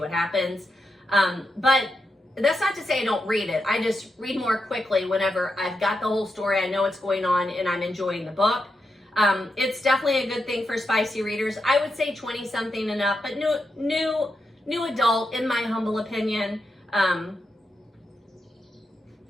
happens. But that's not to say I don't read it. I just read more quickly whenever I've got the whole story, I know what's going on, and I'm enjoying the book. It's definitely a good thing for spicy readers. I would say 20-something and up, but new adult, in my humble opinion.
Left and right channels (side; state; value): both; normal; correlation 0.86